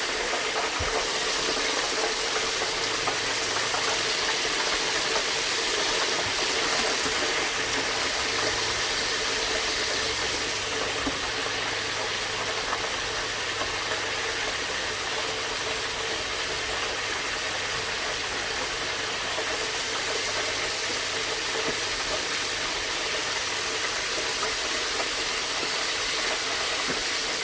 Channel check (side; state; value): both; identical; correlation 1.00